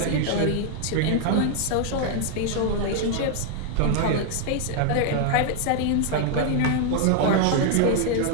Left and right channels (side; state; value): both; different; correlation 0.00